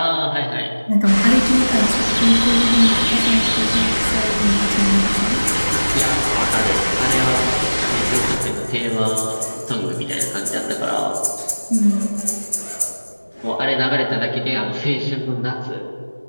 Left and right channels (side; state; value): both; inverted; correlation -1.00